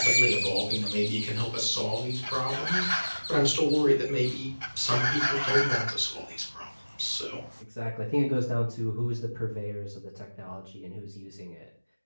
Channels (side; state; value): both; inverted; correlation -1.00